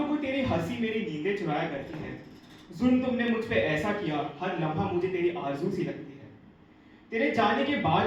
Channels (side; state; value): both; identical; correlation 1.00